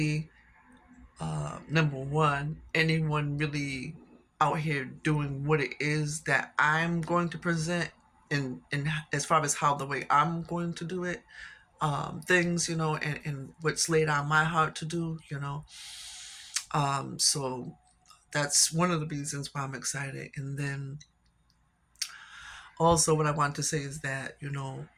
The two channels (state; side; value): identical; both; correlation 1.00